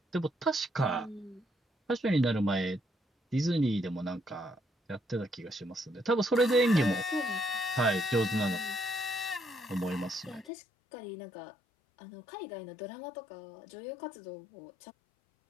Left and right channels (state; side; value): drops out; right; at 10.5 s